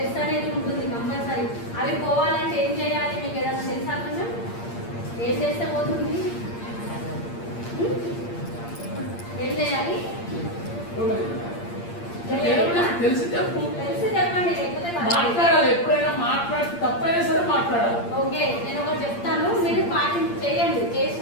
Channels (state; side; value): late; right; 8.7 ms